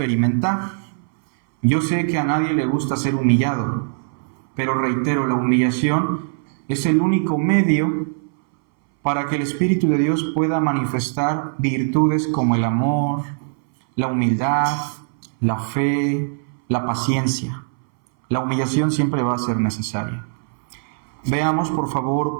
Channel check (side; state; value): left; silent; 62 dB below the other